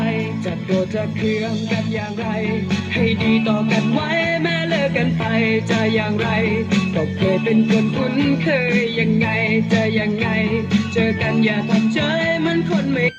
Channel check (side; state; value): both; identical; correlation 1.00